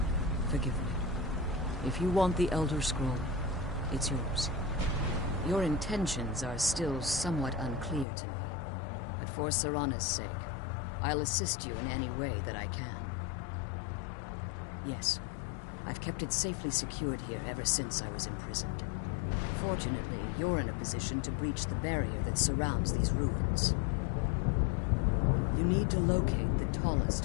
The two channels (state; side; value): drops out; right; at 8.1 s